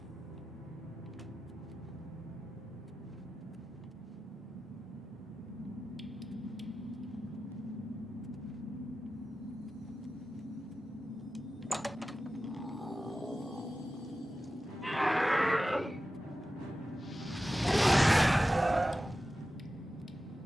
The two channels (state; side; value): normal; both; correlation 0.94